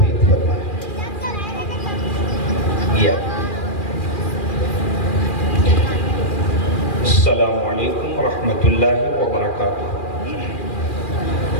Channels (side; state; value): right; late; 2.4 ms